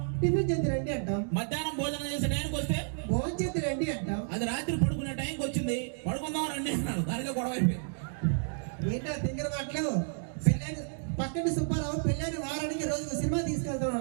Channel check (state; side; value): silent; left; digital silence